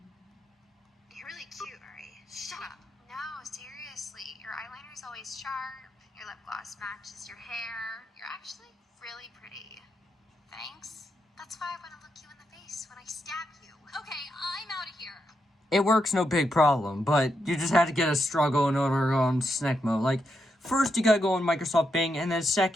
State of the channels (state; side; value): normal; both; correlation 0.83